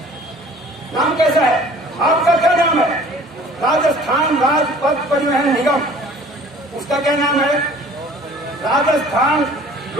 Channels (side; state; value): both; normal; correlation 0.50